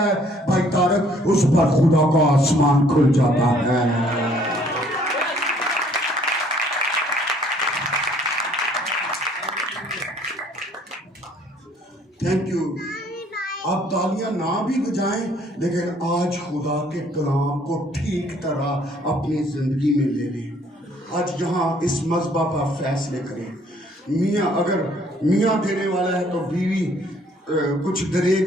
ہے بھائی طارق, اس پر خدا کا آسمان کھل جاتا ہے. Thank you. آپ تالیاں نہ بھی بجائیں لیکن آج خدا کے کلام کو ٹھیک طرح اپنی زندگی میں لے لیں. آج یہاں اس مذبح پر فیصلے کریں. میاں اگر میاں دینے والا ہے تو بیوی کچھ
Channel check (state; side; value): normal; both; correlation 0.61